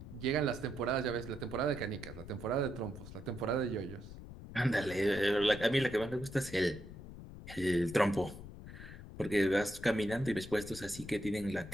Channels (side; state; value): left; noise; rumble, 13 dB below the sound